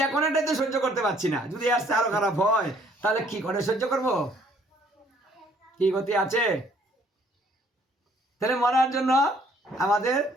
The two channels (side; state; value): both; normal; correlation 0.62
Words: এখন এটাই তো সহ্য করতে পারছি না, যদি আসতে আরো খারাপ হয় তাহলে কি করে সহ্য করব? কি গতি আছে? তাহলে মরার জন্য আমাদের